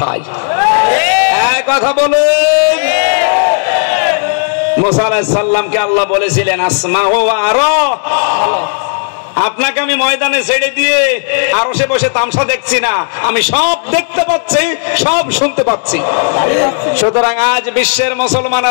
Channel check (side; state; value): right; silent; digital silence